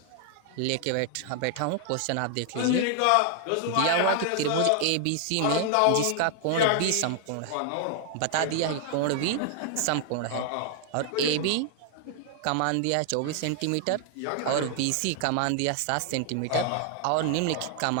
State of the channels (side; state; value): both; different; correlation 0.00